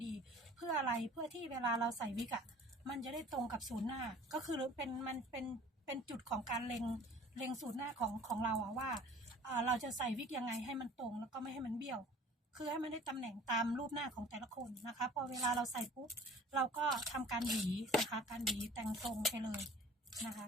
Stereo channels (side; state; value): both; normal; correlation 0.47